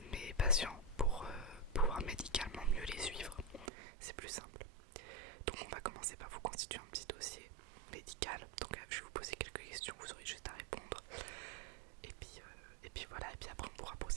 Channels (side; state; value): left; drops out; at 3.7 s